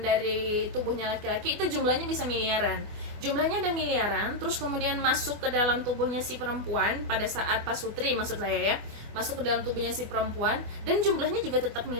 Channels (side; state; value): left; late; 24 ms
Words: dari tubuhnya laki-laki itu jumlahnya bisa miliaran. Jumlahnya ada miliaran, terus kemudian masuk ke dalam tubuhnya si perempuan pada saat pasutri maksud saya ya, masuk ke dalam tubuhnya si perempuan dan jumlahnya juga tetap